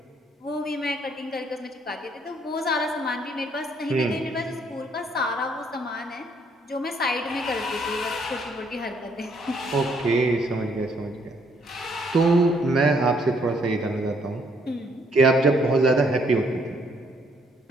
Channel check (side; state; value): both; normal; correlation 0.68